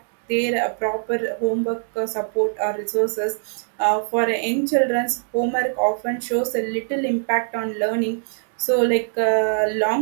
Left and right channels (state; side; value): silent; left; 64 dB below the other